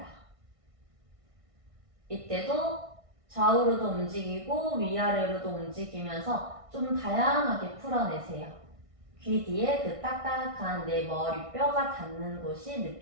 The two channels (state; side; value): late; left; 1.6 ms